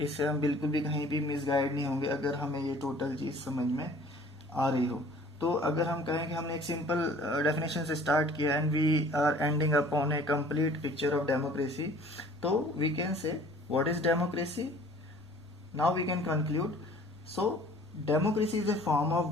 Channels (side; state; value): left; noise; rumble, 29 dB below the sound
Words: इससे हम बिल्कुल भी कहीं भी मिसगाइड नहीं होंगे अगर हमें ये टोटल चीज़ समझ में आ रही हो. तो अगर हम कहें कि हमने एक सिंपल डेफिनेशन से स्टार्ट किया and we are ending upon a complete picture of democracy, तो we can say what is democracy? Now we can conclude. So democracy is a form of